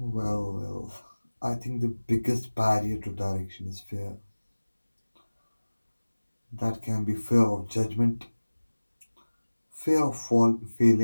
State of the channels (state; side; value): inverted; both; correlation -1.00